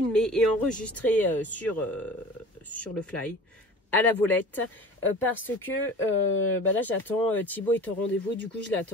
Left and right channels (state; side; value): normal; both; correlation 0.40